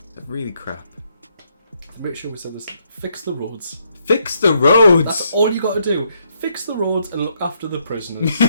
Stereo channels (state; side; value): inverted; both; correlation -0.74